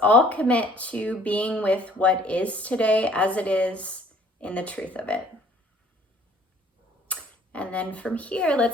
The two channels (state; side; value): normal; both; correlation 0.57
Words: all commit to being with what is today as it is in the truth of it. And then from here,